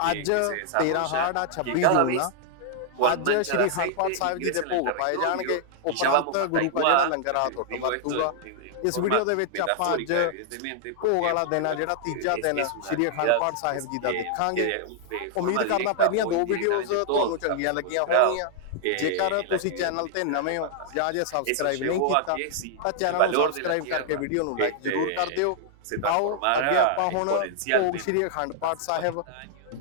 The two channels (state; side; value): different; both; correlation -0.01